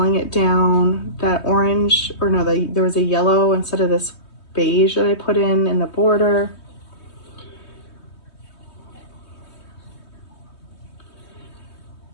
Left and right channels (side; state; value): right; late; 3.2 ms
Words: it down. That orange, or no, there was a yellow instead of this beige that I put in the border.